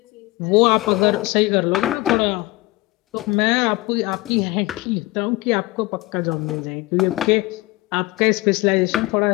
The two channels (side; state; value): right; quieter; 20.2 dB